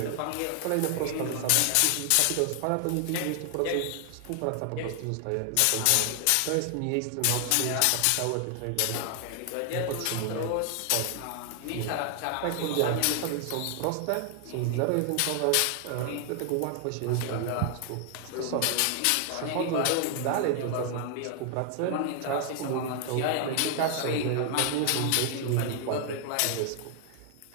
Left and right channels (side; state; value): both; different; correlation 0.00